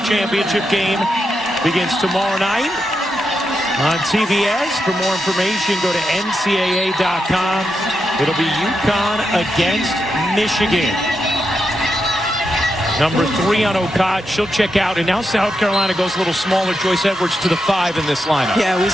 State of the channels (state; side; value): normal; both; correlation 0.86